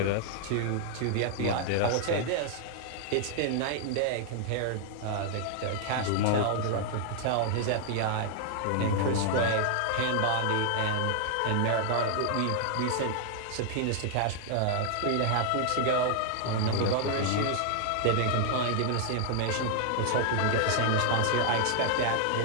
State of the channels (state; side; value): different; both; correlation 0.00